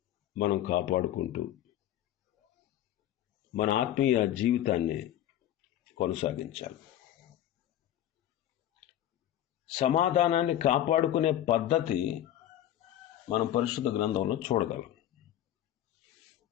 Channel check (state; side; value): quieter; right; 12.2 dB